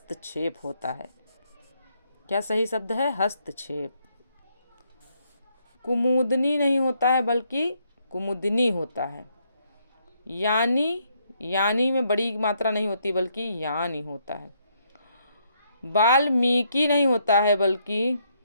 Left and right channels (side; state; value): both; inverted; correlation -0.73